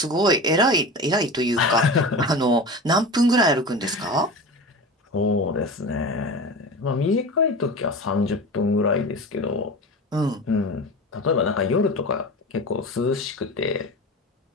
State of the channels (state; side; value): normal; both; correlation 0.30